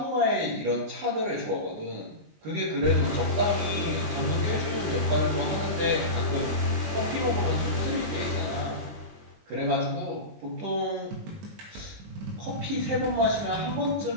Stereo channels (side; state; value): left; late; 20 ms